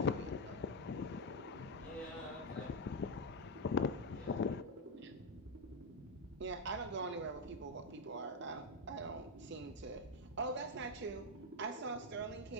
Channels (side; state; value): both; normal; correlation 0.06